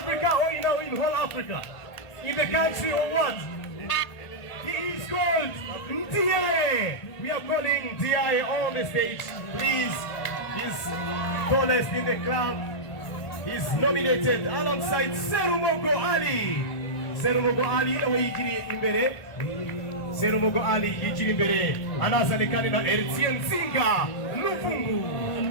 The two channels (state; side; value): late; right; 1.5 ms